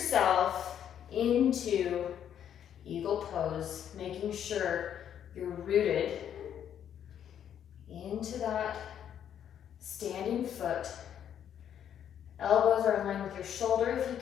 into eagle pose, making sure you're rooted into that standing foot. Elbows are in line with your shoulder if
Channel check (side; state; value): right; quieter; 9.5 dB